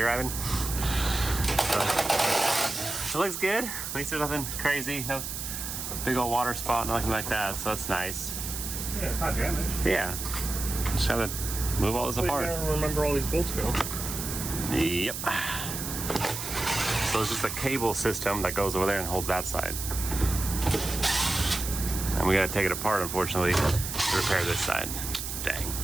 Ivan? So, it looks good. At least there's nothing crazy. No big old water spot, nothing like that. So that's nice. Yeah, it's not damaged. Yeah. Just have to move all this apart. I don't remember all these bolts go. Yep. So it's just a cable system that goes over there and holds that side. And we gotta take it apart, unfortunately, to repair this side. Dang.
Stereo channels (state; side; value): noise; right; hiss, 5 dB below the sound